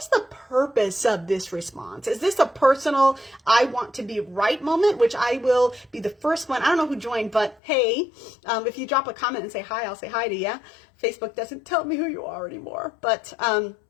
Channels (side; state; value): right; drops out; at 7.6 s